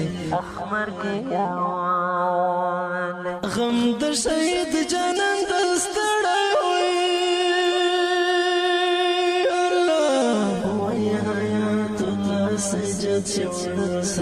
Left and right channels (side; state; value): both; identical; correlation 1.00